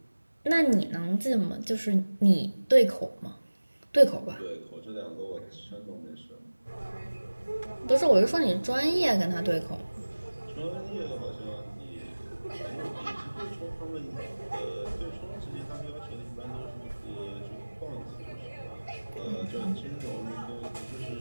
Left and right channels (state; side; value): inverted; both; correlation -1.00